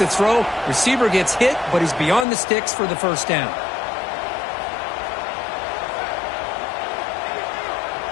throw. Receiver gets hit, but he's beyond the sticks for the first down.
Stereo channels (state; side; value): drops out; right; at 2.2 s